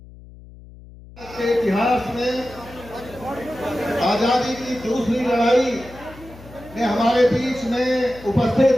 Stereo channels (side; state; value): left; noise; hum, 19 dB below the sound